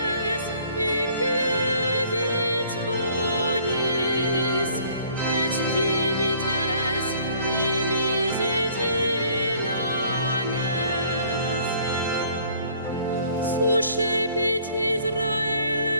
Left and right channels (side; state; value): both; inverted; correlation -0.57